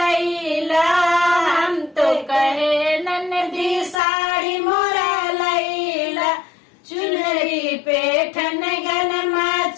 हम तो कहे ननदी साड़ी मोरा लैला। चुनरी पे ठनगन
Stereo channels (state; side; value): drops out; right; at 4.0 s